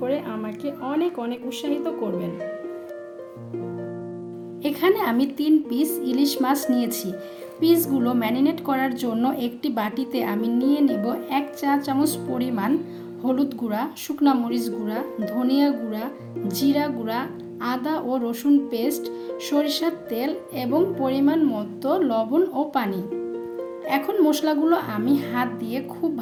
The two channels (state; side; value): identical; both; correlation 1.00